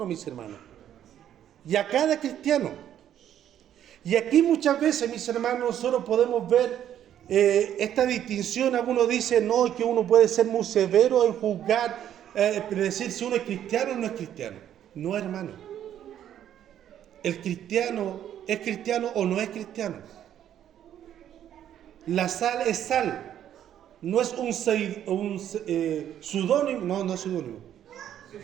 mis hermanos. Y a cada cristiano. Y aquí muchas veces, mis hermanos, nosotros podemos ver esta distinción. Algunos dicen, no, que uno puede ser muy severo en juzgar, decir si uno es cristiano o no es cristiano. No, hermano. El cristiano es cristiano o no es cristiano. La sal es sal. No es un pseudónimo, no es pseudónimo.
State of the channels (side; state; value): left; quieter; 10.6 dB